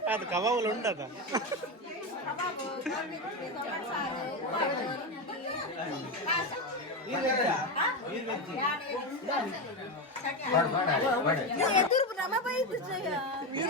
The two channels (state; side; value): normal; both; correlation 0.14